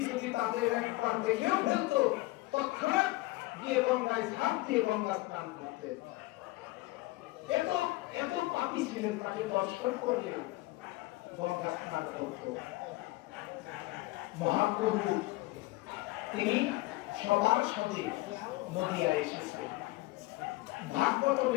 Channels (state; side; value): quieter; right; 20.2 dB